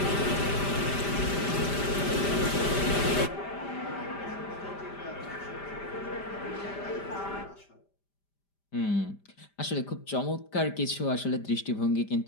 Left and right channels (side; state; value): right; late; 5.0 ms